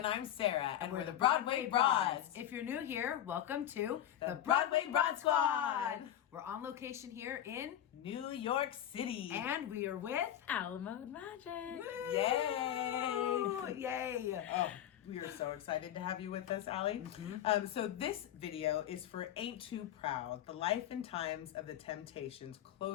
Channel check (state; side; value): quieter; right; 11.2 dB